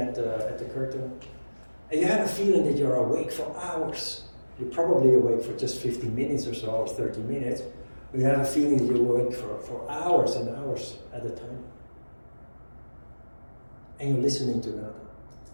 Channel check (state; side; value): inverted; both; correlation -1.00